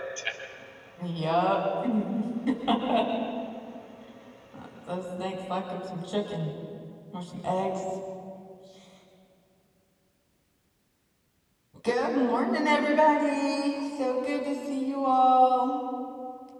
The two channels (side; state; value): both; identical; correlation 1.00